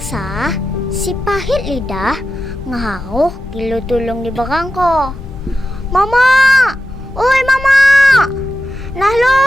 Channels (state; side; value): normal; both; correlation 0.91